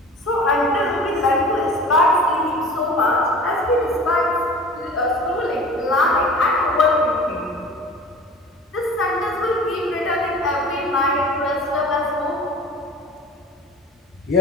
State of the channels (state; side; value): normal; both; correlation 0.41